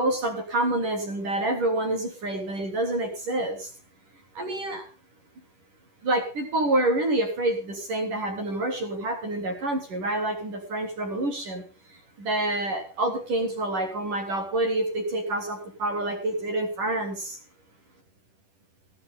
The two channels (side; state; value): left; late; 10 ms